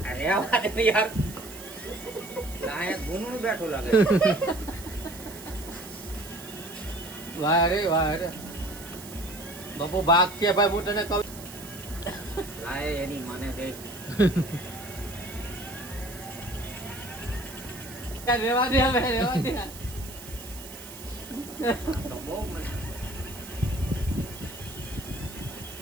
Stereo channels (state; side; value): noise; right; hiss, 14 dB below the sound